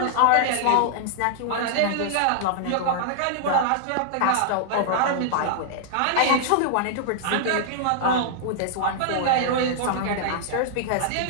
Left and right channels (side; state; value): both; different; correlation -0.01